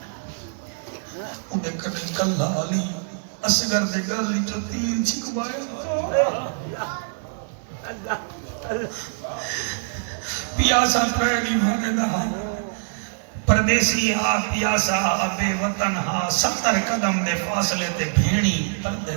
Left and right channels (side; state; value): left; silent; 58 dB below the other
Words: انہیں کنے کلہ علی اصغر دے گل جو 3 چھکوایا، پیاسا پہلی مانے دہا پردیسی ہا پیاسا بے وطن ہا 70 قدم دے فاصلے تے بھیڑی پردے